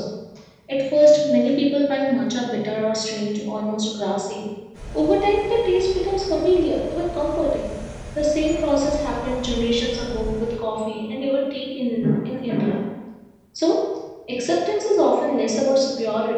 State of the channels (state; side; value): identical; both; correlation 1.00